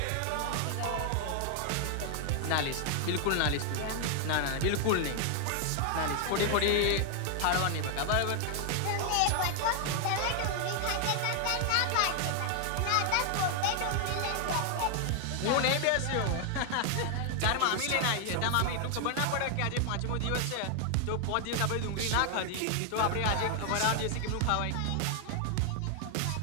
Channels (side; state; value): both; different; correlation 0.00